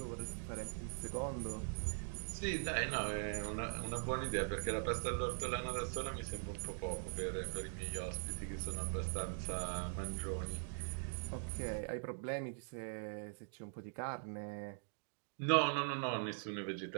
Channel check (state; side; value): silent; left; digital silence